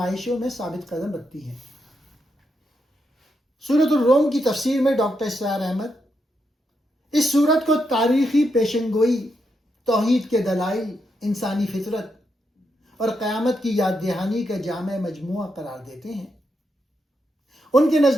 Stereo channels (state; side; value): normal; both; correlation 0.82